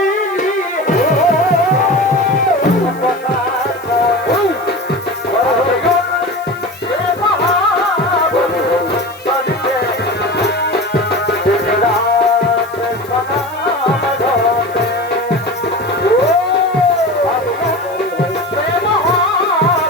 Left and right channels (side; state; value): left; noise; hiss, 24 dB below the sound